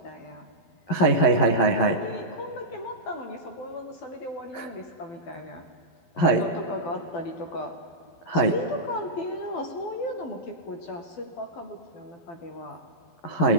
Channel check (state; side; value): late; right; 11 ms